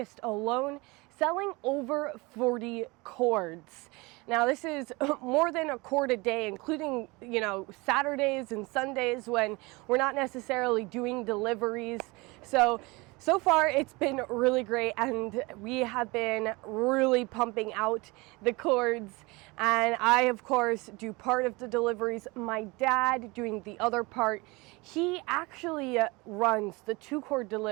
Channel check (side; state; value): left; quieter; 24.7 dB